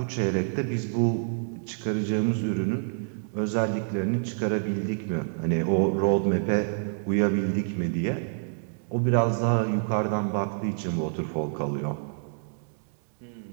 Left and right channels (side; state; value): left; silent; 60 dB below the other